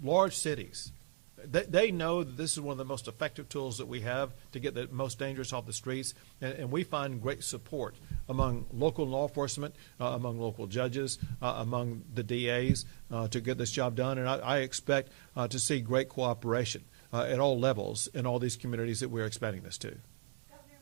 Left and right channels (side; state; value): left; silent; digital silence